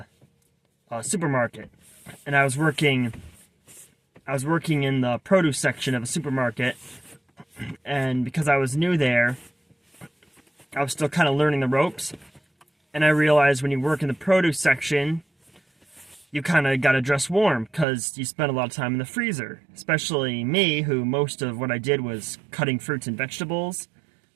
supermarket. And I was working in the produce section of a supermarket. And because I was new there, I was still kind of learning the ropes. And I realized when you work in the produce section, you kind of got to dress warm because you spend a lot of time in the freezer. Especially me, who most of what I did was cutting fruits and vegetables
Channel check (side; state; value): left; drops out; at 17.9 s